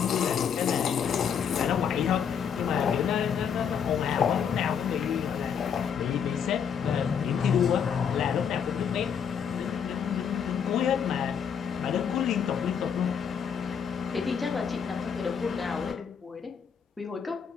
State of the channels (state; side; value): quieter; right; 7.4 dB